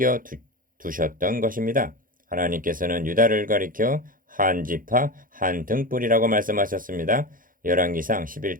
두셨던 것입니다. 하나님께서는 유다를 가리켜 한 지파 한 등불이라고 말씀하셨습니다. 열왕기상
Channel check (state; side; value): late; left; 0.40 ms